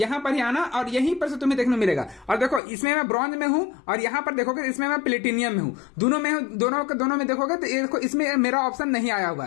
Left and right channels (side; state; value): right; drops out; at 2.6 s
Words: पर ही आना और यहीं पर से तुम्हें देखने मिलेगा। और देखो इसमें मैं ब्रॉन्ज में हूं और यहां पर देखोगे इसमें मैं प्लेटिनियम में हूं, दोनों में हूं, दोनों में देखोगे तो देखो इसमें मेरा ऑप्शन नहीं आया हुआ